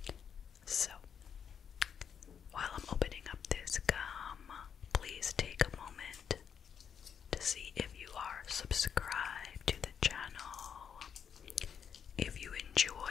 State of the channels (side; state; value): right; quieter; 7.6 dB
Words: So, while I'm opening up this gum, please take a moment to see if you are subscribed to the channel. If you